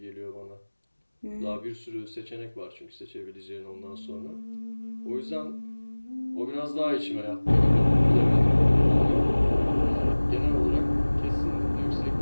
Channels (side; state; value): both; inverted; correlation -1.00